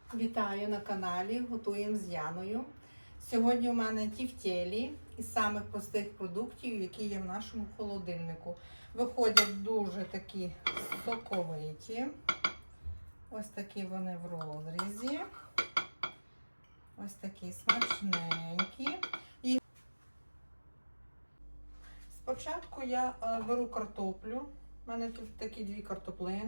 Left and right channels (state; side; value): inverted; both; correlation -1.00